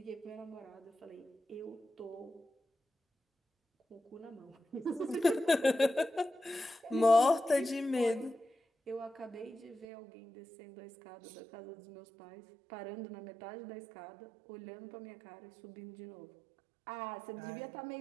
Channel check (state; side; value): drops out; left; at 9.9 s